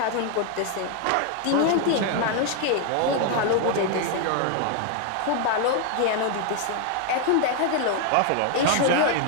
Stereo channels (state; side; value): different; both; correlation 0.00